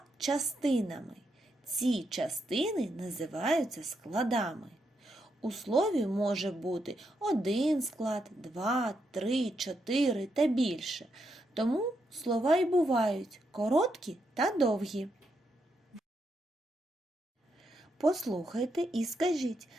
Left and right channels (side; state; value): both; normal; correlation 0.81